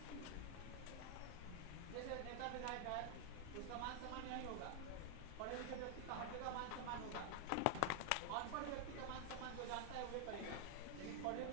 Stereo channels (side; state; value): both; different; correlation 0.00